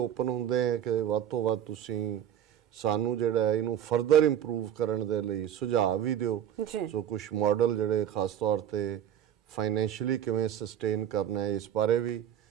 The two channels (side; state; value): left; quieter; 10.2 dB